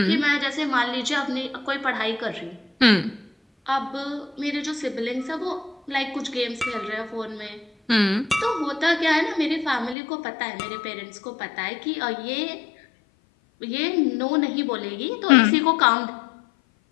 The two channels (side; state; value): right; drops out; at 10.0 s